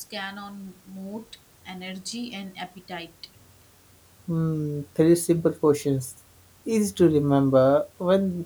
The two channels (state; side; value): identical; both; correlation 1.00